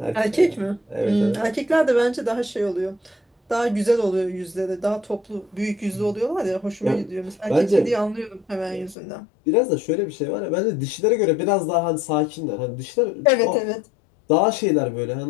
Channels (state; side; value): drops out; right; at 9.0 s